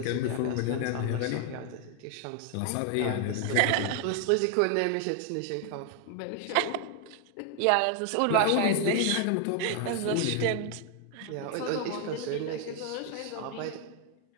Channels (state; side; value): different; both; correlation 0.00